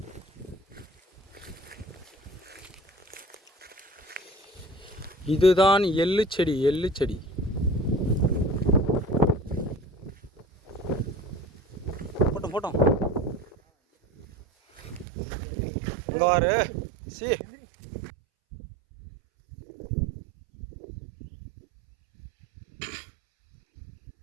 இதுதான் எள்ளு செடி. எள்ளு செடி போட்டோம் போட்டோம். அங்கே வாரு சி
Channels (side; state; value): left; drops out; at 15.1 s